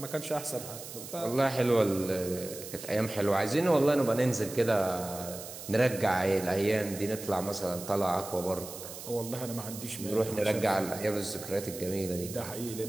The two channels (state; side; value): noise; right; hiss, 12 dB below the sound